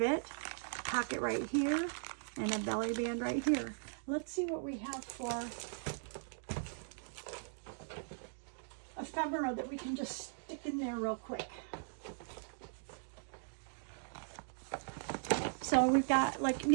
it. Pocket right here and a belly band right here. Let's see what we have for ephemera that we can just stick in there real quick. So we've got, like,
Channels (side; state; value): left; silent; digital silence